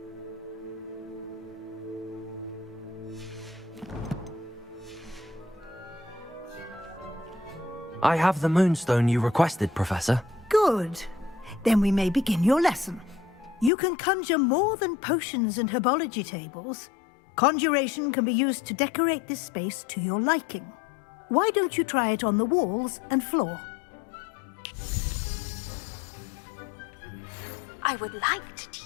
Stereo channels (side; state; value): right; drops out; at 13.7 s